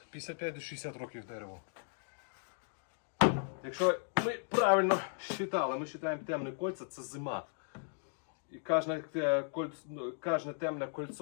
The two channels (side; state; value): right; silent; 54 dB below the other